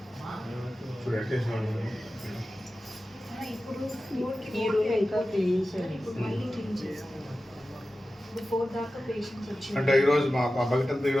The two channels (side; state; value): both; normal; correlation 0.94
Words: ఇప్పుడు ఎట్టేసిన ఇప్పుడు ఈ రూమ్ ఇంకా క్లీన్ చేయాలి. ఇప్పుడు మళ్ళీ క్లీన్ చేస్తారు. ఇప్పుడు 4 దాకా పేషెంట్స్ వచ్చి అంటే ఈరోజు మా బకెట్ అంతా